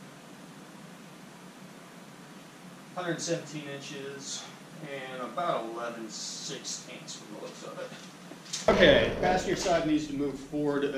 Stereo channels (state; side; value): identical; both; correlation 1.00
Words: $117 inches and about 11/16 from the looks of it. Okay, passenger side needs to move forward